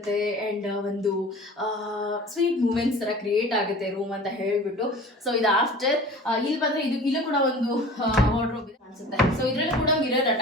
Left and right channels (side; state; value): both; normal; correlation 0.41